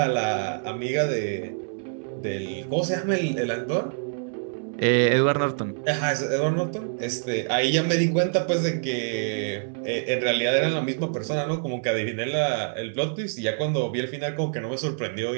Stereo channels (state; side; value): silent; left; 61 dB below the other